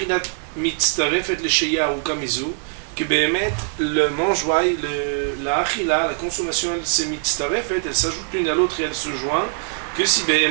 mitztarefet lesheya ou kamizu, que béhémet, le mangeoire, la achila, la consommation, elle se mitztarefet, elle s'ajoute l'une à l'autre et elle se joint, que si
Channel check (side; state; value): left; silent; 64 dB below the other